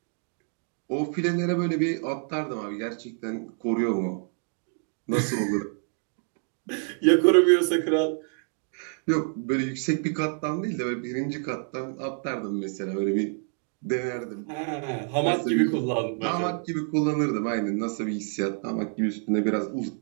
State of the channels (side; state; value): left; silent; 55 dB below the other